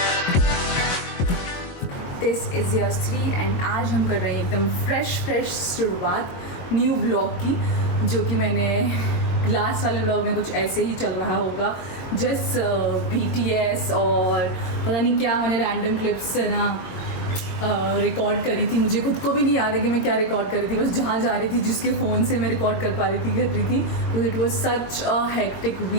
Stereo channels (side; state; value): right; late; 22 ms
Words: This is Yasvi and आज हम कर रहे हैं एकदम फ्रेश शुरुआत न्यू व्लॉग की, जो कि मैंने लास्ट वाले व्लॉग में कुछ ऐसे ही चल रहा होगा, जस्ट BTS और पता नहीं क्या मैंने रैंडम क्लिप्स है ना रिकॉर्ड करी थी। मुझे खुद को भी नहीं याद है कि मैं क्या रिकॉर्ड करी थी, बस जहाँ जा रही थी जिसके फ़ोन से मैं रिकॉर्ड कर पा रही थी कर रही थी। तो it was such a hectic